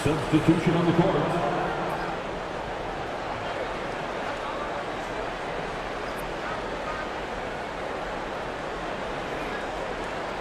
Substitution on the court.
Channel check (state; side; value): identical; both; correlation 1.00